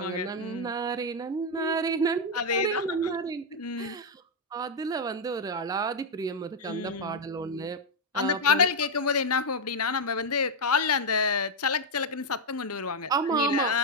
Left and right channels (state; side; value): normal; both; correlation 0.01